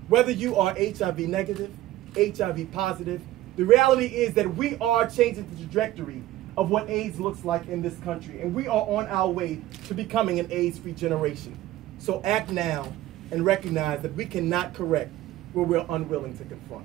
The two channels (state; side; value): quieter; left; 15.2 dB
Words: Whether you are HIV negative, HIV positive, the reality is that we are changing the trajectory of what AIDS looks like in this country. And we are on our way to becoming an AIDS-free generation. So act now and recognize that we cannot correct where we're unwilling to